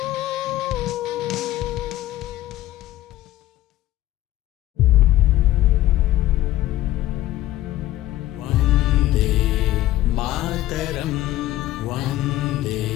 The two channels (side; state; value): right; quieter; 15.0 dB